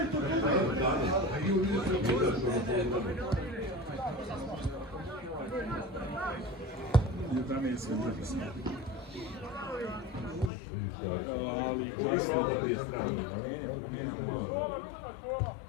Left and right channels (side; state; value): right; drops out; at 10.5 s